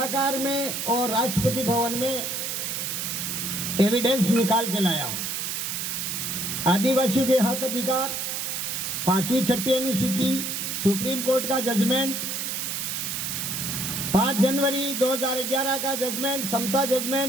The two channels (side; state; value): right; noise; hiss, 2 dB below the sound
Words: में और राष्ट्रपति भवन में एविडेंस निकाल के लाया हूँ। आदिवासियों के हक अधिकार, 5वीं छठी अनुसूची, सुप्रीम कोर्ट का जजमेंट, 5 जनवरी 2011 का जजमेंट, समता